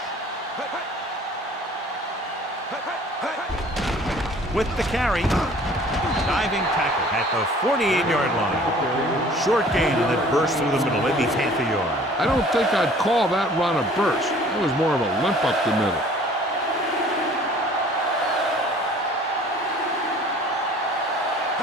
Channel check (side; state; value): both; normal; correlation 0.51